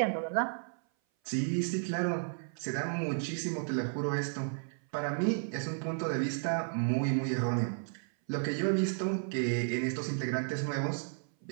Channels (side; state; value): left; silent; 56 dB below the other